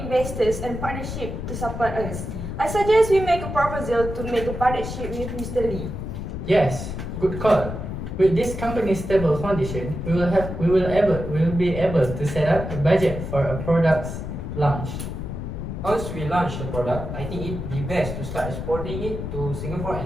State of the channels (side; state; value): left; noise; rumble, 6 dB below the sound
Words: and partnership to support us. I suggest we make a proposal to make a partnership with Mr. Lee. Yes, good call. With this company's stable foundation, we will be able to set up a budget for a product's launch. Once we launch the product, I think it'd be best to start exporting it to Singapore